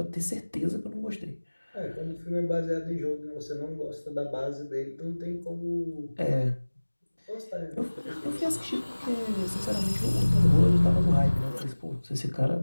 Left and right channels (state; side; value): inverted; both; correlation -1.00